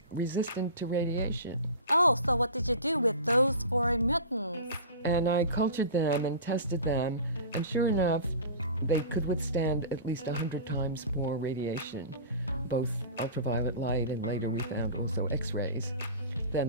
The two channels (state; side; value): inverted; both; correlation -0.35